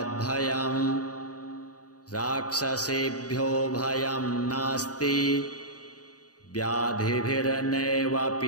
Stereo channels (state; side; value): late; right; 0.68 ms